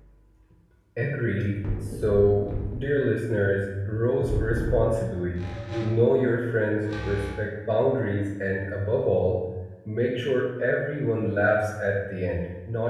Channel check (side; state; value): both; identical; correlation 1.00